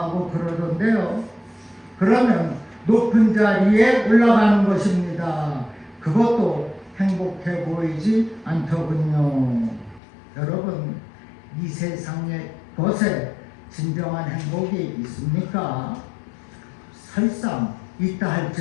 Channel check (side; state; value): right; drops out; at 10.0 s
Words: 그러던데요. 그러면 높은 자리에 올라가는 것입니다. 그것도 행복해 보이지 않더군요. 여러분, 이 세상의 것에 진정한 행복이 있습니까? 설상 있다